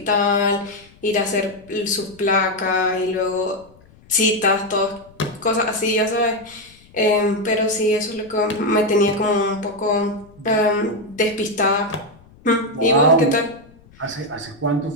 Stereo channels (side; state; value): left; noise; rumble, 26 dB below the sound